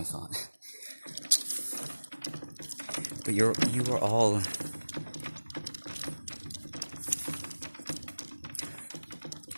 of thought. But you are all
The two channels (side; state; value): both; inverted; correlation -1.00